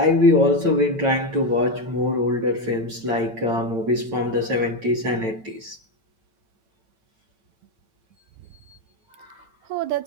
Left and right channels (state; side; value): late; left; 8.9 ms